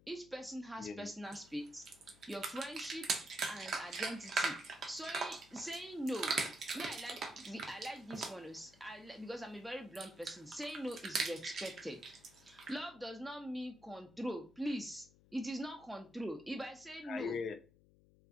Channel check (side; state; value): left; noise; hum, 25 dB below the sound